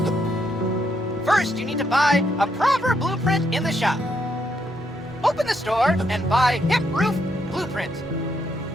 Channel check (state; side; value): normal; both; correlation 0.76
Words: First, you need to buy a proper blueprint in the shop. Open the store and buy hip roof blueprint.